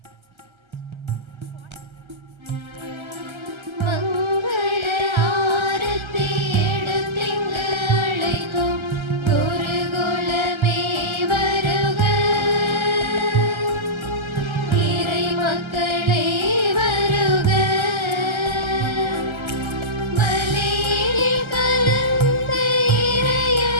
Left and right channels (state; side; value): late; left; 1.3 ms